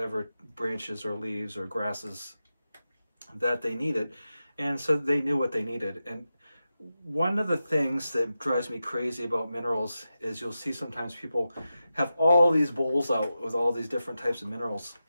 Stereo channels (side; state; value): both; inverted; correlation -0.91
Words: branches or leaves or grasses that they needed, and so they knew what they needed. And one of the things that drives me crazy about minerals is you'll see sometimes people have all these bowls out with all these different types of minerals,